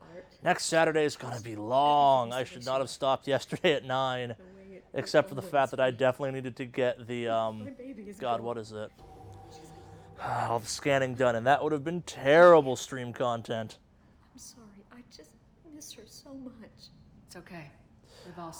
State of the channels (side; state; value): both; identical; correlation 1.00